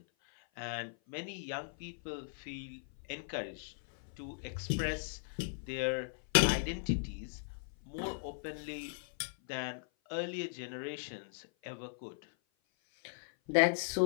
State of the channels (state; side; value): silent; right; 53 dB below the other